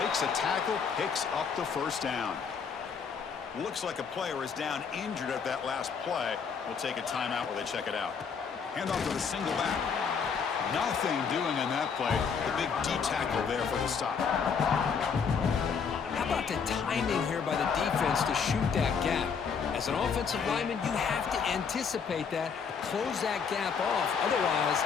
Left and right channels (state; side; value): quieter; right; 6.2 dB